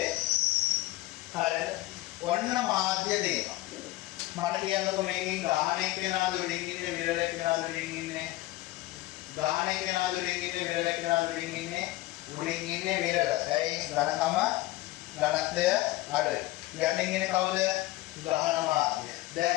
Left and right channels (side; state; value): right; quieter; 17.9 dB